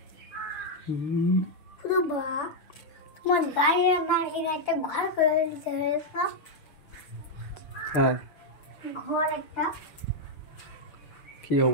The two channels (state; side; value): late; right; 6.8 ms